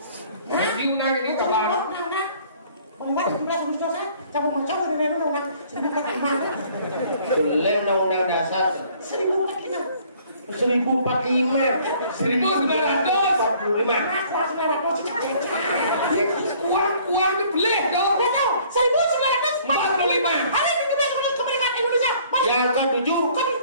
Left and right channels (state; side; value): inverted; both; correlation -0.57